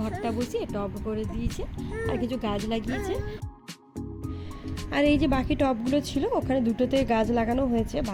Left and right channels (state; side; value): identical; both; correlation 1.00